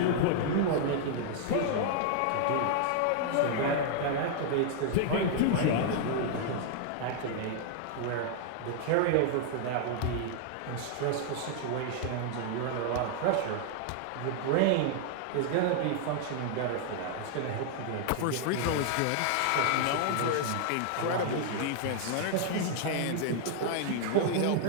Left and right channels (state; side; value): different; both; correlation 0.00